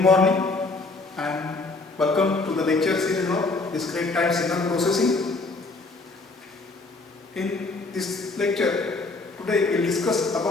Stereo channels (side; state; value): right; quieter; 3.5 dB